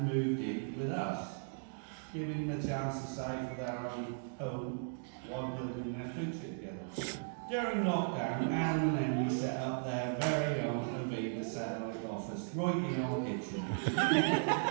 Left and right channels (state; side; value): silent; left; digital silence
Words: moved in with us, giving them a chance to save for their own home while building their future together. During lockdown, Adam and Emily set up their very own Aviva satellite office right in our kitchen.